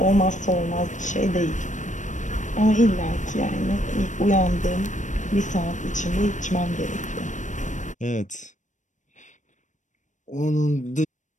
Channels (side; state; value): right; late; 0.36 ms